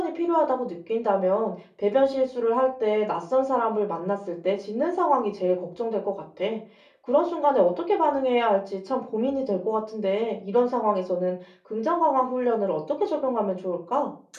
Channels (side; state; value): both; identical; correlation 1.00